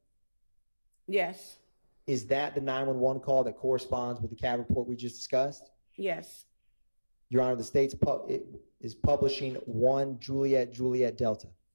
Yes. Is that the 911 call that corresponds with the CAD report we just discussed? Yes. Your Honor, the state's is publishing 1 Juliet Juliet Delta.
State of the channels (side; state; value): both; inverted; correlation -1.00